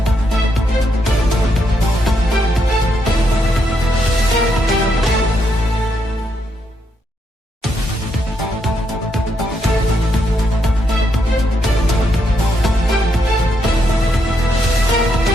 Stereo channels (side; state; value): both; normal; correlation 0.78